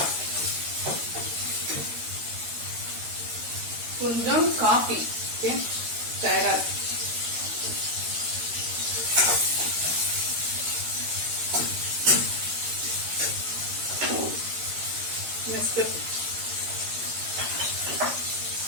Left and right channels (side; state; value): left; late; 13 ms